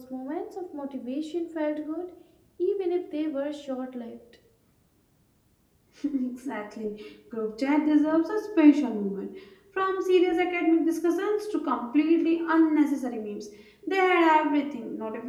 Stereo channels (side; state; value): both; identical; correlation 1.00